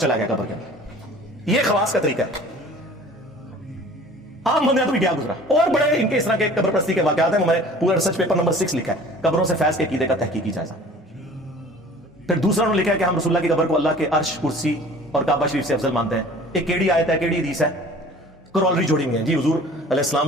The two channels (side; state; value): both; normal; correlation 0.46